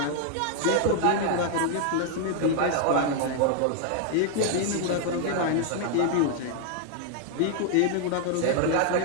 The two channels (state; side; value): different; both; correlation 0.00